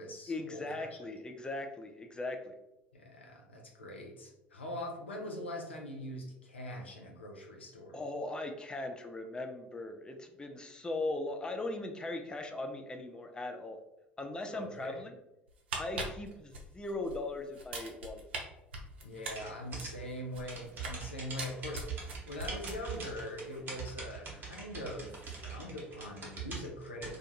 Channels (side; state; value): both; normal; correlation 0.43